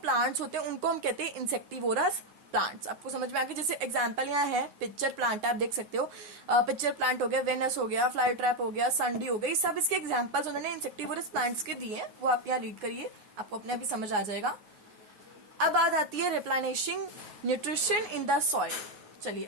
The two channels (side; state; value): left; late; 9.6 ms